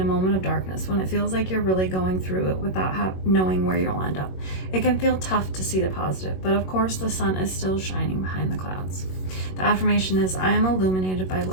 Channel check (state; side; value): late; right; 21 ms